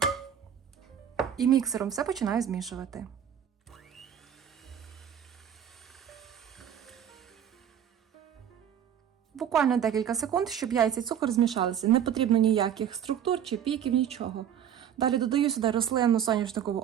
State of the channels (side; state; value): left; quieter; 9.2 dB